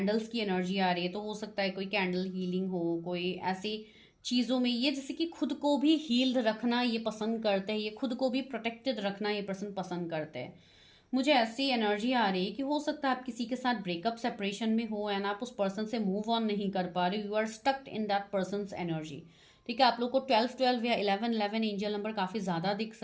की एनर्जी आ रही है, तो हो सकता है कोई कैंडल हीलिंग हो, कोई ऐसी चीज़ों में ये जैसे कि खुद को भी हील्ड रखना ये पसंद करते हैं, ये खुद को भी प्रोटेक्टेड रखना ये पर्सन पसंद करते हैं। मुझे ऐसी एनर्जी आ रही है कि हो सकता है आप किसी के साथ ब्रेकअप सेपरेशन में हो, एंड आप उस पर्सन से मूव ऑन नहीं कर पा रहे, you are stucked in that person's energy, ठीक है। आप लोग को 12-12 या 11-11 एंजल नंबर काफ़ी ज़्यादा दिख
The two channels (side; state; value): both; identical; correlation 1.00